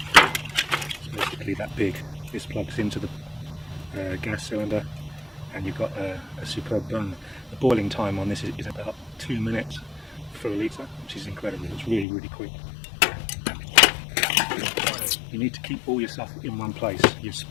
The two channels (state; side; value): drops out; right; at 12.1 s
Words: it's basically that big. This plugs into the gas cylinder, and you've got a superb burn. The boiling time on this is about 2 minutes for a litre, which is incredible. It's really, really quick. You need to keep all your stuff in one place. Your